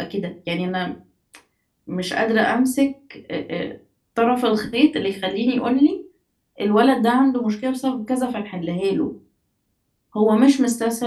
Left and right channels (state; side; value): identical; both; correlation 1.00